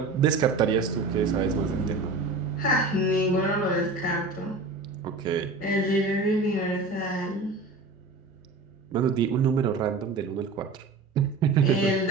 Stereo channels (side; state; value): left; quieter; 3.5 dB